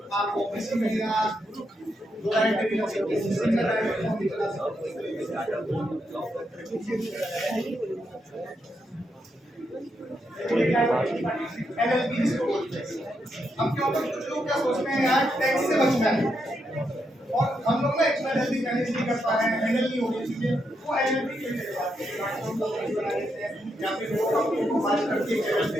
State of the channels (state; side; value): normal; both; correlation 0.81